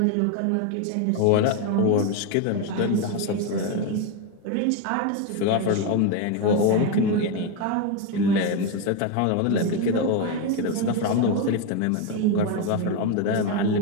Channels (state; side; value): different; both; correlation 0.02